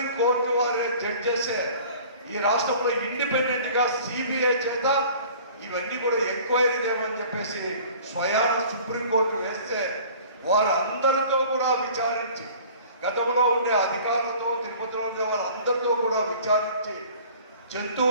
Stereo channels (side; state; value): both; inverted; correlation -0.47